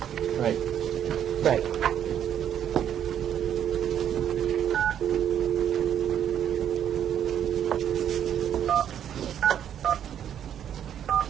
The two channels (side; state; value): left; quieter; 9.7 dB